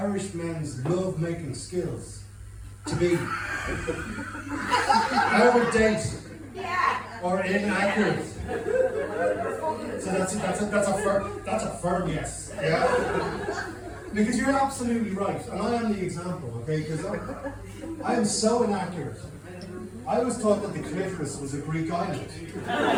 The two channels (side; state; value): both; identical; correlation 1.00